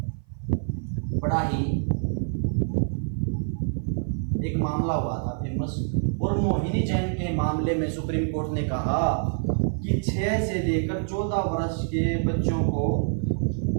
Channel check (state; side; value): silent; left; 55 dB below the other